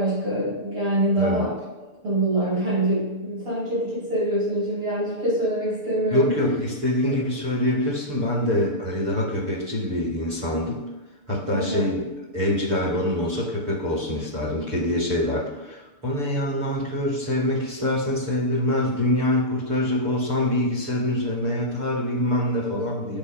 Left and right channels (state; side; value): late; left; 6.8 ms